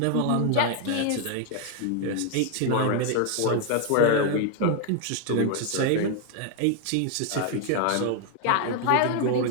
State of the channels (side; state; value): both; different; correlation 0.00